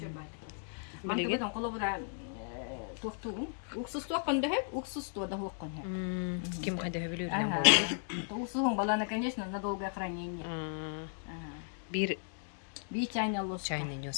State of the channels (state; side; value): silent; right; digital silence